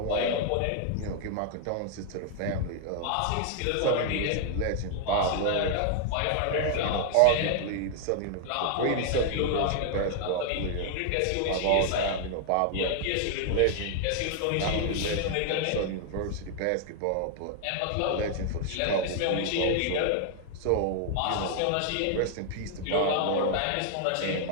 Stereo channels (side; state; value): both; different; correlation 0.00